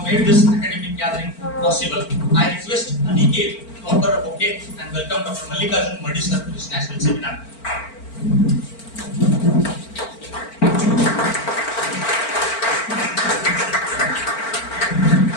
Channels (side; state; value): right; late; 4.4 ms